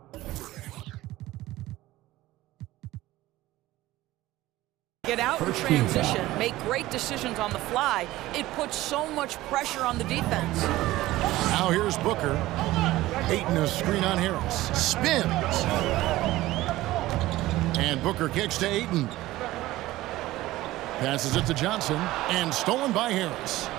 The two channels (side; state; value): left; quieter; 17.0 dB